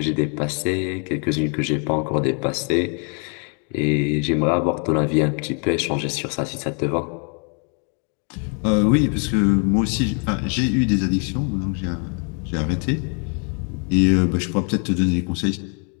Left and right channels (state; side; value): quieter; right; 38.7 dB